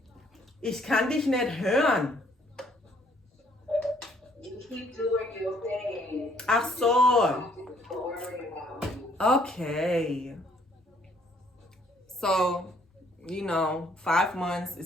Ich kann dich nicht hören. You keep doing your thing. Ach so. Don't worry about me. Okay. So, you know, 5 months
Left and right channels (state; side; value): normal; both; correlation 0.64